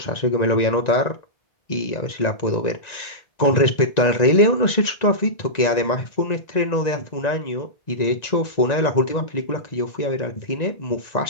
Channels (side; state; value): right; late; 1.9 ms